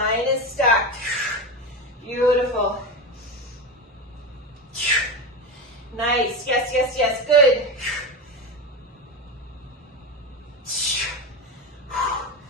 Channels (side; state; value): both; normal; correlation 0.18